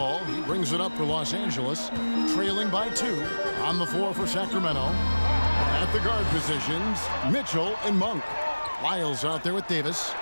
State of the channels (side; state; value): both; inverted; correlation -1.00